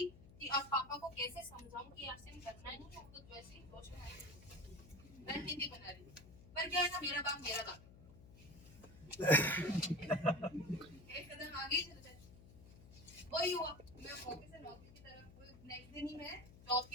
कि अब पापा को कैसे समझाऊं कि आरसीएम करना नहीं है, तो वैसे ही रणनीति बना रही थी। पर क्या है ना, मेरा बाप एक कदम आगे चल गए। वही हुआ, मैं ऑफिस से नौकरी की तरफ, नेक्स्ट दिन ही मैं जॉब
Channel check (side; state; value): left; noise; hum, 19 dB below the sound